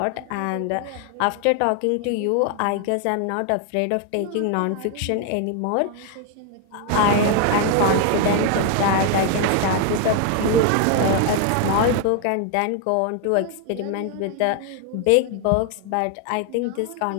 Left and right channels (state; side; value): different; both; correlation 0.00